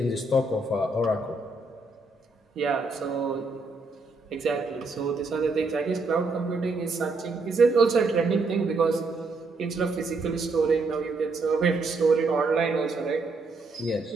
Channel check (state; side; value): quieter; left; 3.4 dB